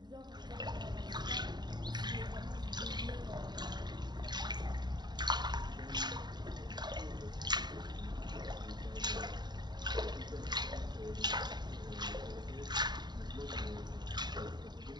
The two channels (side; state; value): left; late; 0.21 ms